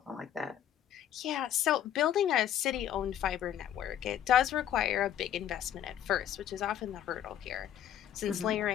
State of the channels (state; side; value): quieter; right; 10.5 dB